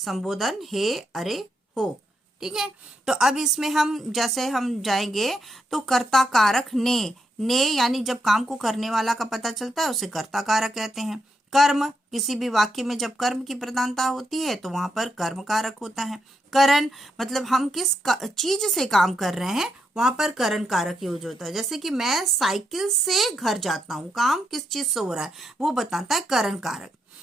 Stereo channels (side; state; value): both; normal; correlation 0.81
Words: हे, अरे, हो। ठीक है। तो अब इसमें हम जैसे हम जाएंगे तो कर्ता कारक ने यानी जब काम को करने वाला का पता चलता है उसे कर्ता कारक कहते हैं। कर्म, किसी भी वाक्य में जब कर्म की प्रधानता होती है तो वहां पर कर्म कारक होता है। करण मतलब हम किस चीज से काम कर रहे हैं, वहां पर करण कारक यूज होता है। जैसे कि मैं साइकिल से घर जाता हूँ, काम किस चीज से हो रहा है वो बताता है करण कारक।